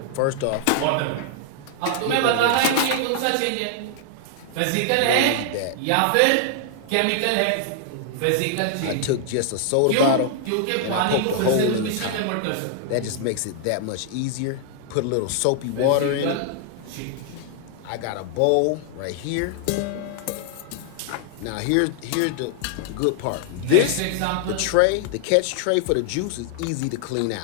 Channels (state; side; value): different; both; correlation 0.00